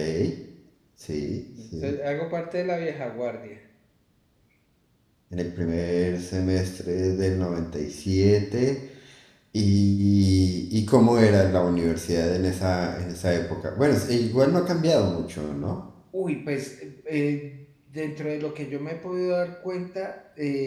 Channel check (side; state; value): both; identical; correlation 1.00